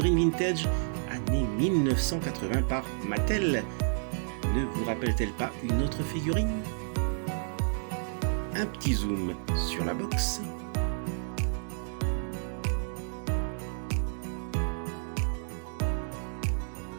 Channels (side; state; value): left; silent; digital silence